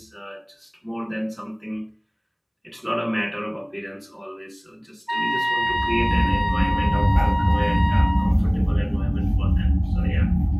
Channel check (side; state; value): both; identical; correlation 1.00